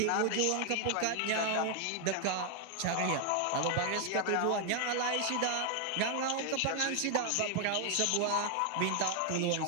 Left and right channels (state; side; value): different; both; correlation 0.00